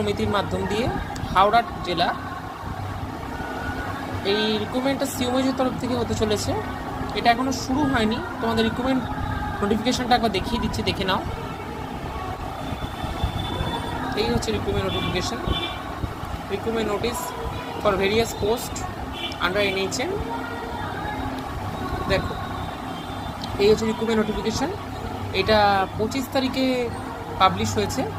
মাধ্যম দিয়ে হাওড়া জেলা। এই রিক্রুটমেন্টটা সিওমএইচের তরফ থেকে হতে চলেছে। এটা এখনও শুরু হয়নি। তোমাদের রিক্রুটমেন্ট নোটিফিকেশানটা একবার দেখিয়ে দিচ্ছি, দেখে নাও। এই হচ্ছে recruitment notification. Recruitment notice for various post under NHM। দেখো, এই হচ্ছে রিক্রুটমেন্ট নোটিফিকেশান। এটা 25 তারিখে পাবলিশ হয়েছে।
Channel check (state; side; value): identical; both; correlation 1.00